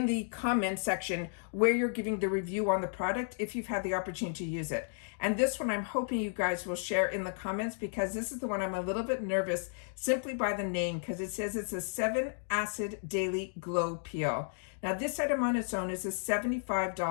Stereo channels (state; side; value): silent; right; digital silence